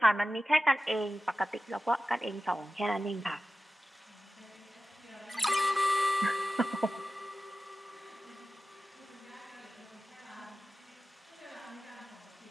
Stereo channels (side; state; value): both; normal; correlation 0.94